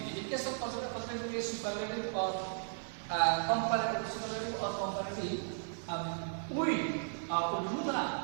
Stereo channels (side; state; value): left; silent; digital silence